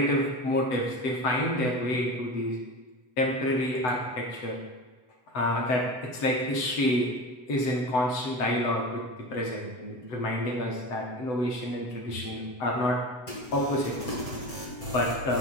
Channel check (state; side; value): late; right; 7.9 ms